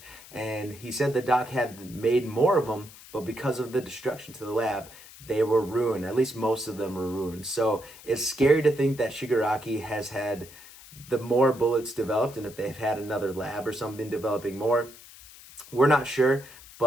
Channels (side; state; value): left; noise; hiss, 19 dB below the sound